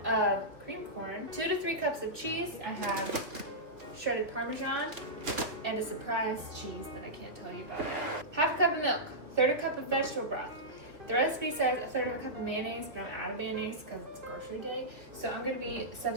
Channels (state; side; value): late; left; 2.4 ms